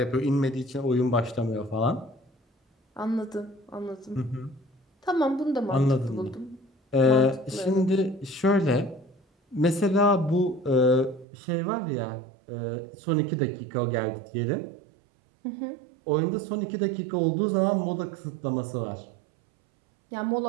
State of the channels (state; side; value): drops out; left; at 11.2 s